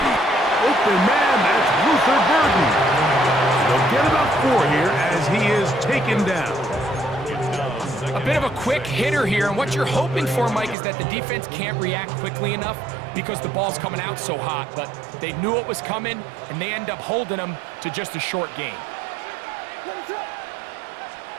Open man, that's Luther Burden. They'll get about 4 here as he is taken down. A bit of a quick hitter here, and what you're hoping for, Mike, is that the defense can't react quickly enough because the ball's coming out so hot, but they knew it was coming, and they end up holding them to just a short gain.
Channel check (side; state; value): left; drops out; at 10.8 s